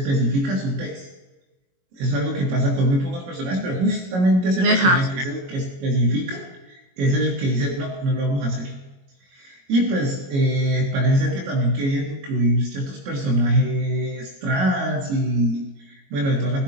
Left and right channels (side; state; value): left; late; 22 ms